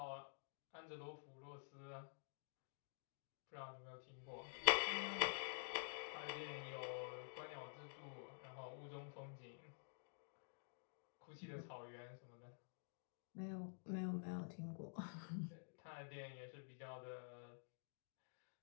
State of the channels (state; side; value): silent; right; digital silence